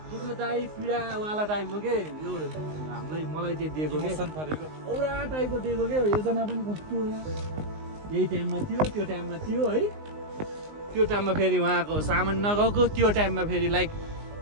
दुःखदायी पीडावाला टाइपको के यो हामीलाई मलाई चाहिँ दिएको के औरा टाइपको दिएको के योजना पनि कस्तो यही टाइममा थियो त्यो टाइममा थियो है त्यो टाइममा फेरि उहाँको सामान नगएको त्यो टाइममा फेरि लाइक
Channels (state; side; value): late; left; 19 ms